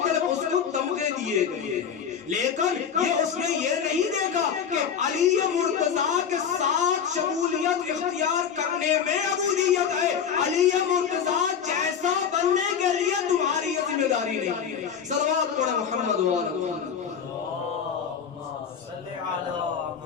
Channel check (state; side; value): quieter; right; 7.5 dB